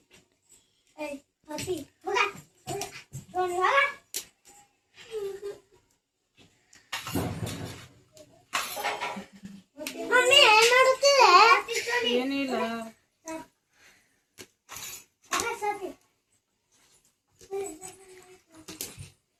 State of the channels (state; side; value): identical; both; correlation 1.00